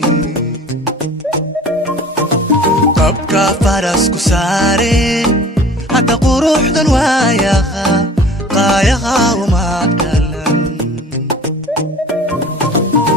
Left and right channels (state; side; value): normal; both; correlation 0.45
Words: abka farasku saare hadda quruxdan waayaha qaayaha uma galan